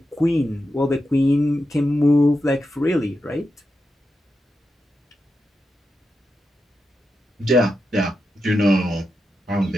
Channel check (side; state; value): both; normal; correlation 0.88